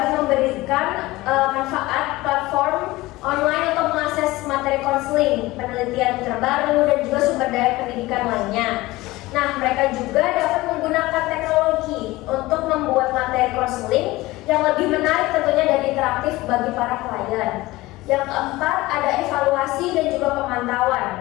memberikan manfaat platform online untuk mengakses materi konseling, penelitian terbaru, dan juga sumber daya pendidikan lainnya. Nah, mereka juga dapat menggunakan teknologi untuk membuat materi konseling yang lebih menarik tentunya dan interaktif bagi para klien. Yang keempat ada evaluasi dan juga pemantauan.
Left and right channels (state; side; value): quieter; right; 19.4 dB